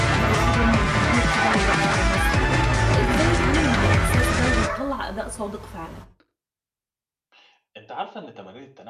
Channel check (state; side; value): identical; both; correlation 1.00